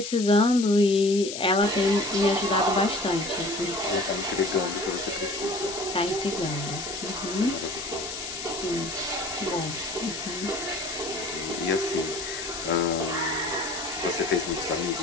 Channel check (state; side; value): noise; left; hiss, 7 dB below the sound